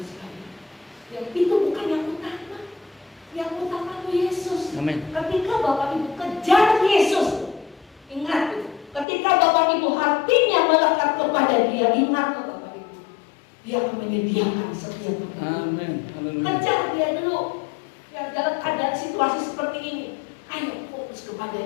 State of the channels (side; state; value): right; drops out; at 9.1 s